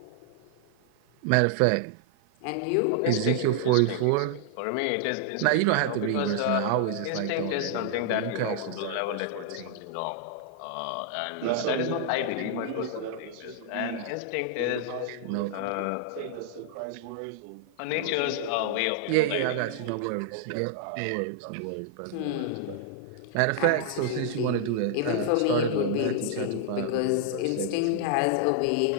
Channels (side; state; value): both; different; correlation -0.01